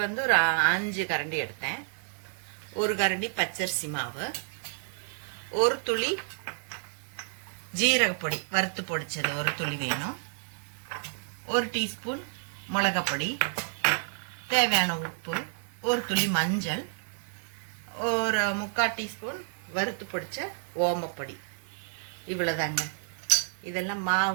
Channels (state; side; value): silent; left; 58 dB below the other